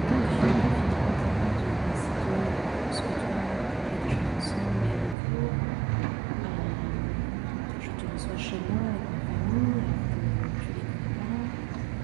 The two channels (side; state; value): left; drops out; at 5.2 s